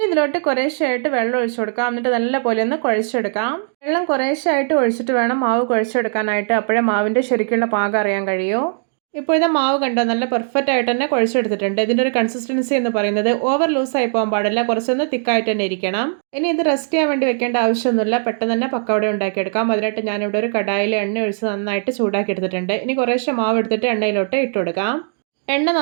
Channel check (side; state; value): left; silent; 61 dB below the other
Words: ഇതിലോട്ട് കുറേശ്ശായിട്ട് വെള്ളം ഒഴിച്ചു കൊടുക്കാം. എന്നിട്ട് നല്ല പോലെ ഒന്ന് കുഴച്ചെടുക്കാം. വെള്ളം കുറേശ്ശായിട്ട് ഒഴിച്ചിട്ട് വേണം മാവ് കുഴച്ചെടുക്കാനായിട്ട്. അപ്പോഴേ മാവിൻ്റെ ശരിക്കുള്ള പാകം അറിയാൻ കഴിയൂ. ഇപ്പോൾ ഇത് മാവ് കണ്ടോ, നല്ല പെർഫെക്റ്റ് ആയിട്ട് തന്നെ കുഴച്ചെടുത്തിട്ടുണ്ട്. ഇതിൻ്റെ ഒരു കൺസിസ്റ്റൻസി എന്ന് പറയുന്നത് ഓവർ ലൂസായി പോകാൻ പാടില്ല, കുറച്ചൊന്ന് തിക്കായിട്ട് തന്നെ ഇരിക്കണം. ഇനി ഇത് റെസ്റ്റ് ചെയ്യാൻ വേണ്ടി വെക്കേണ്ട ആവശ്യമൊന്നുമില്ല, പെട്ടെന്ന് തന്നെ പക്കവട ഉണ്ടാക്കിയെടുക്കാം. അതിനായിട്ട് ഞാനിവിടെ ഒരു കടായിൽ എണ്ണ ഒഴിച്ച് നന്നായിട്ട് ചൂടാക്കി എടുത്തിട്ടുണ്ട്. ഇനി കുറേശ്ശെ മാവ് എടുത്തിട്ട് എണ്ണയിലോട്ട് ഇട്ട് കൊടുക്കാം. എണ്ണ